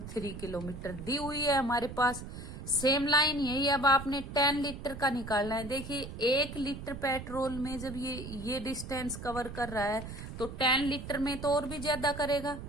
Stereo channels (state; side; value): noise; right; rumble, 10 dB below the sound